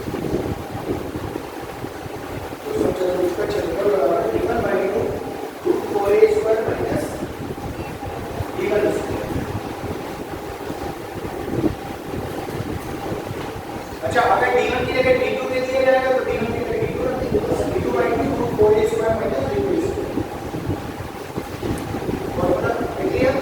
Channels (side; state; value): both; identical; correlation 1.00